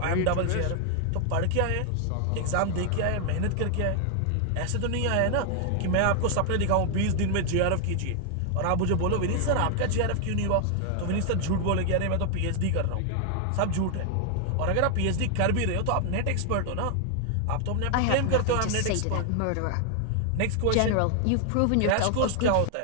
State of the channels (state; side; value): different; both; correlation 0.00